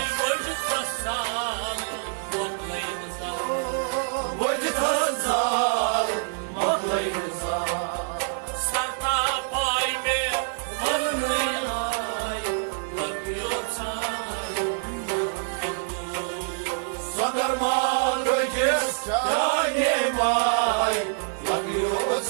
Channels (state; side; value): silent; left; digital silence